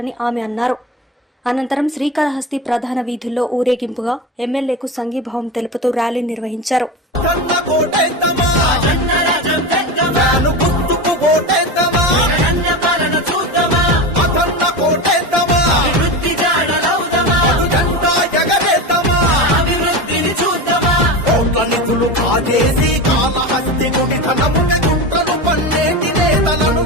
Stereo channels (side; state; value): both; normal; correlation 0.23